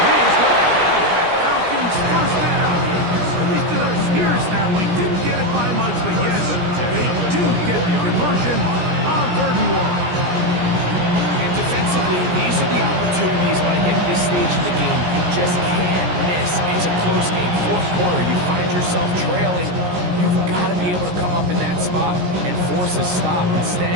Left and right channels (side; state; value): left; late; 17 ms